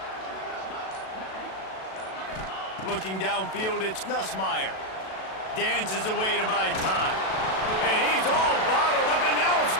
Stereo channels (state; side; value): late; right; 37 ms